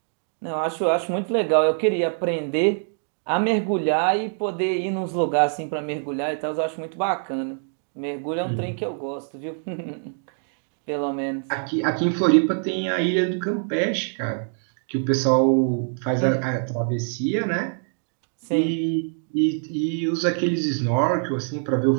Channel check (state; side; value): silent; left; 62 dB below the other